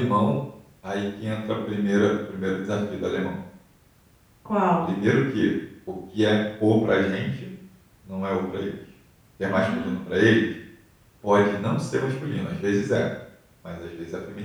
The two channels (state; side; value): identical; both; correlation 1.00